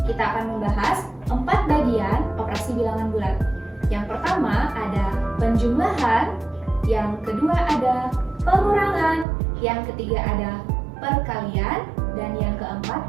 Kita akan membahas 4 bagian operasi bilangan bulat. Yang pertama ada penjumlahan, yang kedua ada pengurangan, yang ketiga ada perkalian, dan yang keempat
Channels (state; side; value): drops out; left; at 9.2 s